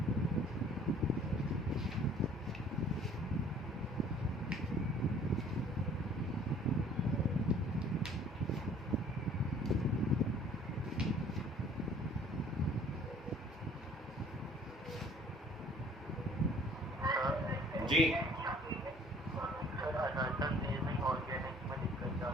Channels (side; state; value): both; normal; correlation 0.54